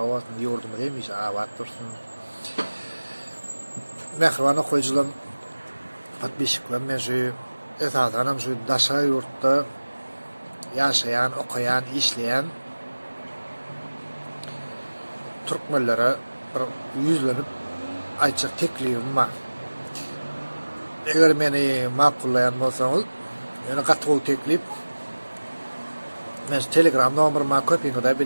yurdumuz demiş abat dursun. Mehribanı koyuculan patbişiklen meşi esasen şu daşa yurtta yaşayan, okuyan, işleyen Türkmenlere bir yüzlenip ayçak teklifim var. Eğer beni makullayan bolsaňyz, ýöne gatgy teklip men Telegram nomerymyň köpüňi de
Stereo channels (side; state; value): both; inverted; correlation -1.00